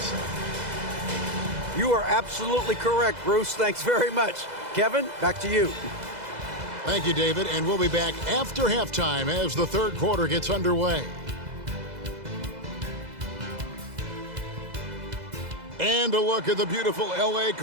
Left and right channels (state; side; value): late; left; 2.0 ms